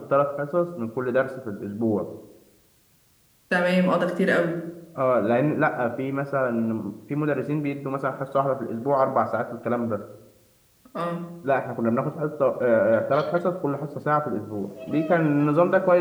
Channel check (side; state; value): both; identical; correlation 1.00